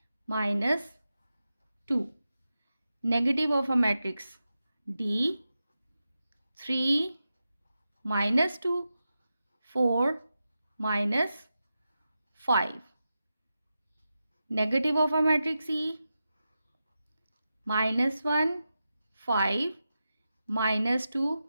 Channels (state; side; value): inverted; both; correlation -0.91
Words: -2. Negative of a matrix D 3, -2, 4, -5. Negative of a matrix E -1, 5, -2,